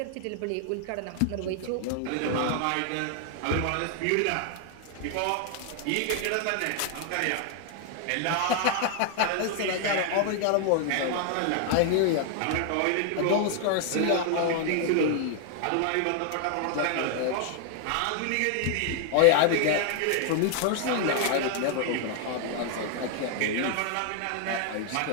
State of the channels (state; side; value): different; both; correlation 0.00